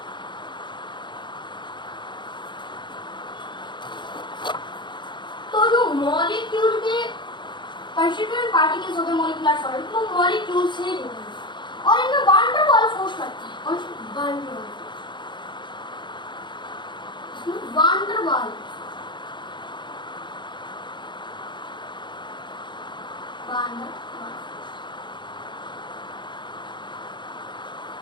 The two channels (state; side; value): late; right; 0.22 ms